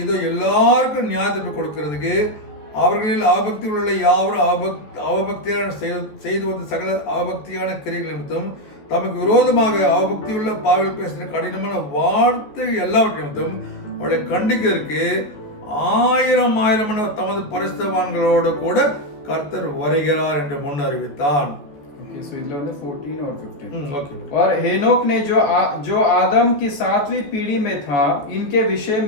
இதோ எல்லாருக்கும் நியாயத்தீர்ப்பு கொடுக்கிறதுக்கு அவர்களில் அவபக்தி உள்ள யாவரும் அவபக்தியான செய்து வந்த சகல அவபக்தியான கிரைகள் நிமித்தம் தமக்கு விரோதமாக அவபக்தியுள்ள பாவில் பேசுகிற கடினமான வார்த்தை எல்லாவற்றை நிமித்தம் அவளை கண்டிக்கிறதுக்கு 1000 தமது பரிசுத்தவான்களோடு கூட கர்த்தர் வருகிறார் என்று முன் அறிவித்தான். ओके सो इधर வந்து 14 और 15 ओके। और हेनोक ने जो आदम की 7वीं पीढ़ी में था, इनके विषय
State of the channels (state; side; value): late; right; 14 ms